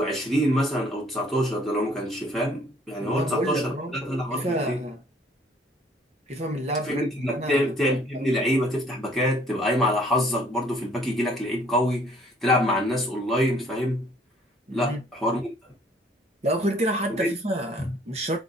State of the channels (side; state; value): both; normal; correlation 0.59